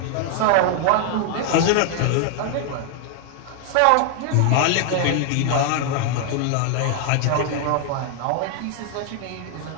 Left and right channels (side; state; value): both; different; correlation 0.00